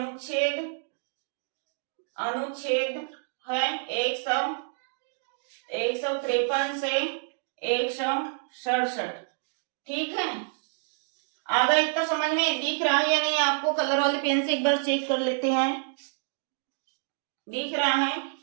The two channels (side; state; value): left; silent; digital silence